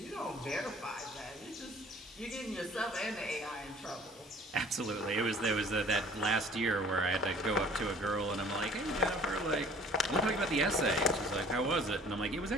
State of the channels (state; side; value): normal; both; correlation 0.51